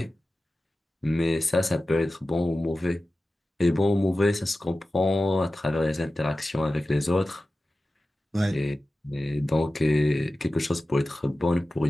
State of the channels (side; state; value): both; normal; correlation 0.95